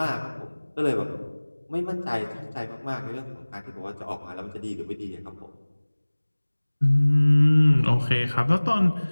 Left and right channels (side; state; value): both; inverted; correlation -1.00